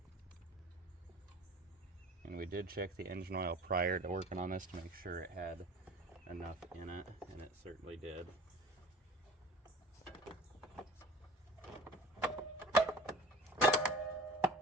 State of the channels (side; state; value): both; normal; correlation 0.41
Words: And we did check the engine oil prior to working on this to make sure it had enough in it, and it certainly did.